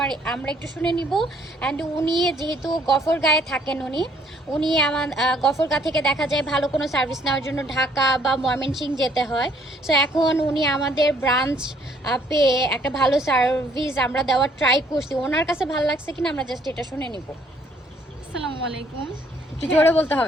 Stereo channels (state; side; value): normal; both; correlation 0.64